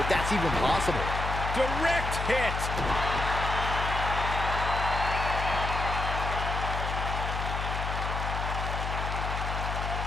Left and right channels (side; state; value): left; noise; hum, 3 dB below the sound